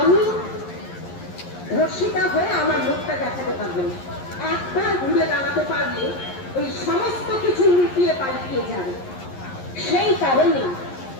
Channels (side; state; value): right; late; 11 ms